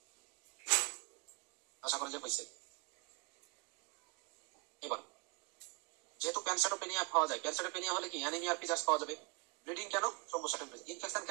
আশা করা যায় হয়েছে। এবার যেহেতু প্যানসাইটোপেনিয়া পাওয়া যায়, প্যানসাইটোপেনিয়া হলে কি অ্যানিমিয়ার ফিচার্স পাওয়া যাবে। ব্লিডিং কেন? থ্রম্বোসাইটোপেনিয়া। ইনফেকশন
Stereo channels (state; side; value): quieter; left; 31.1 dB